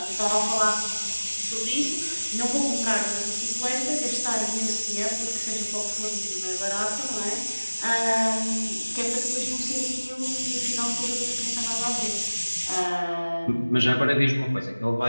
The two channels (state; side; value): inverted; both; correlation -1.00